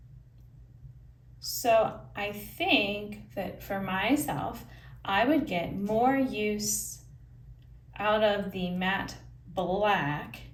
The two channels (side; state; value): both; identical; correlation 1.00